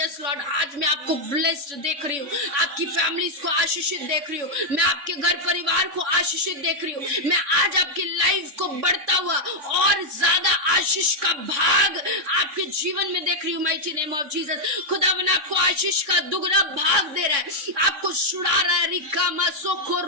Lord. आज मैं आपको ब्लेस्ड देख रही हूँ, आपकी फैमिलीज को आशीषित देख रही हूँ, मैं आपके घर परिवार को आशीषित देख रही हूँ। मैं आज आपकी लाइफ को बढ़ता हुआ और ज्यादा आशीष का भाग आपके जीवन में देख रही हूँ माइटी नेम ऑफ जीसस। खुदावन आपको आशीष का दुगना भाग दे रहा है, आपको छुड़ा रहा है। रिकामा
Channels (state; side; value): late; left; 3.5 ms